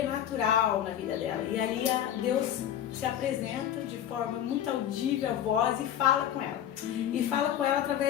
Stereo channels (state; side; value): quieter; right; 10.5 dB